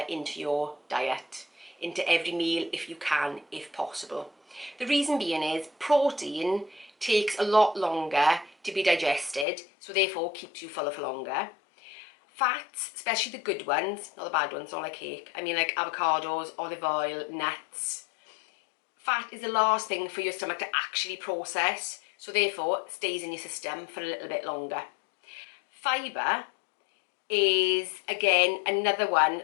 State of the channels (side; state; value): right; drops out; at 9.5 s